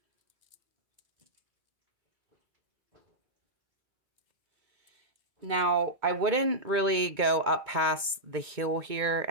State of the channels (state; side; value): late; left; 2.2 ms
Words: Now, I wouldn't really go up past the heel here,